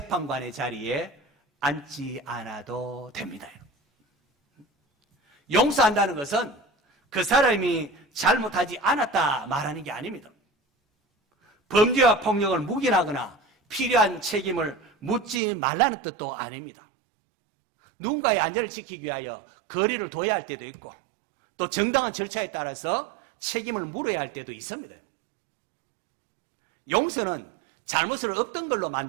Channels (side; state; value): left; drops out; at 15.4 s